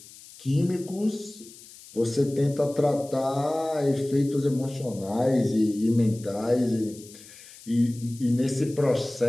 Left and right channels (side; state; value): left; noise; hiss, 20 dB below the sound